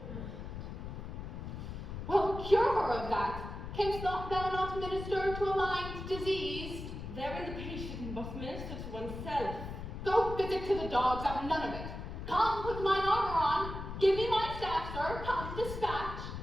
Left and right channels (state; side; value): noise; left; rumble, 8 dB below the sound